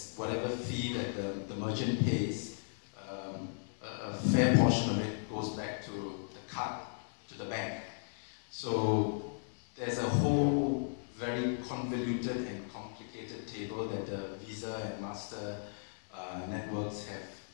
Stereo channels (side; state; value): right; silent; 54 dB below the other